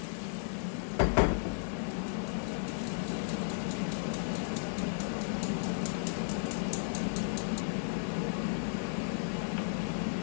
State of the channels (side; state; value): right; silent; 55 dB below the other